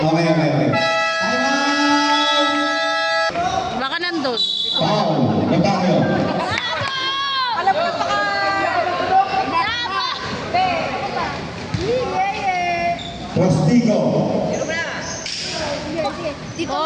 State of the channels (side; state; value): both; identical; correlation 1.00